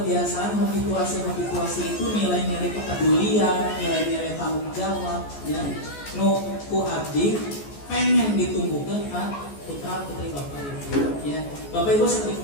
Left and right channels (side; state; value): right; late; 14 ms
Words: habituasi itu, nilai-nilai kepedulian, nilai-nilai tanggung jawab ya. Nu ku abdi pengen ditumbuhkan kan putra putri Bapak Ibu ya. Bapak Ibu seperti